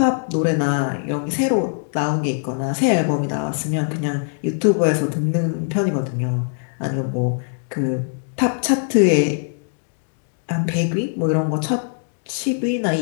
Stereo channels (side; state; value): right; silent; digital silence